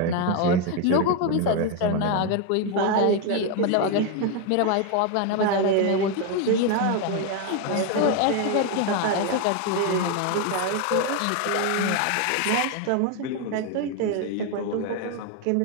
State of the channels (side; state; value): both; different; correlation 0.01